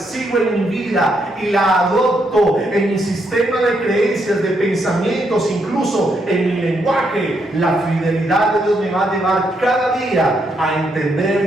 en mi vida y la adopto en mi sistema de creencias, de pensamientos, incluso en mi lenguaje, la fidelidad de Dios me va a llevar cada día a entender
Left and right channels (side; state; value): both; normal; correlation 0.77